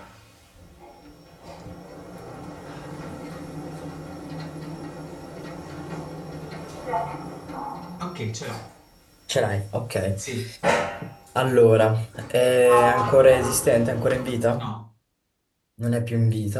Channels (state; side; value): identical; both; correlation 1.00